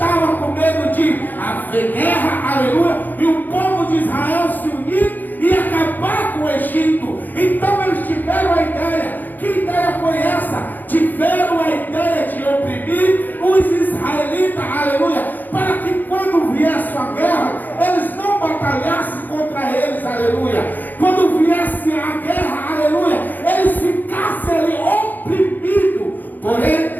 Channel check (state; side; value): late; right; 0.086 ms